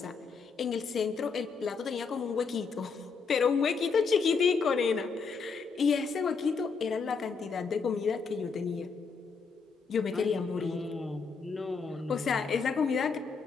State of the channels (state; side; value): quieter; right; 5.2 dB